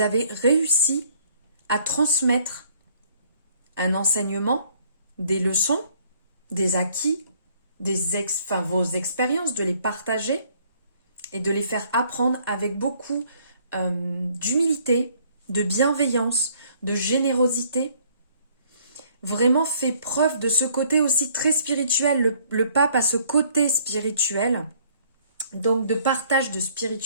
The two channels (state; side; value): inverted; both; correlation -0.62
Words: avez réussi à transmettre un enseignement, des leçons, des acquis, vos expériences, de les partager et de les faire apprendre avec beaucoup d'humilité, de bienveillance, de générosité. Vraiment fait preuve de ce côté aussi très spirituel. Le pape a ce côté spirituel, donc de partage de